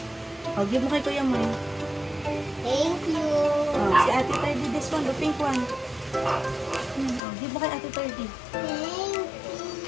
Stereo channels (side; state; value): right; drops out; at 7.2 s